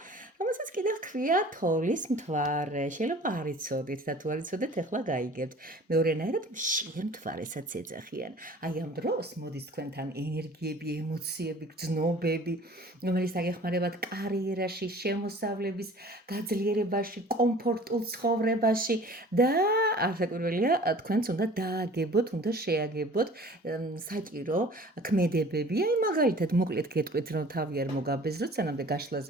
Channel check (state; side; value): normal; both; correlation 0.47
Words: რომელსაც კიდევ ჰქვია თოვლის მთვარე. შეიძლება არ იცოდით და თუ არ იცოდეთ, ახლა გაიგებთ. მეორენაირად მშიერ მთვარესაც ეძახიან. აი ამ დროს მოდის თქვენთან ენერგიები, ემოციები, გრძნობები, რომელიც დაგეხმარებათ კარიერაში, შემოსავლების გაძლიერებაში, კომფორტულ ცხოვრებაში და არასაკვირველია, თქვენც უნდა დააგებოთ, უნდა შეაგებოთ საჭირო ქმედებები. აი მაგალითად მოკლედ გეტყვით, რომ თავი არ მოგაბეზროთ, სანამდე